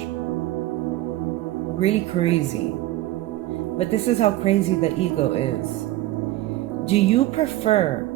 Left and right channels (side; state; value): left; quieter; 16.2 dB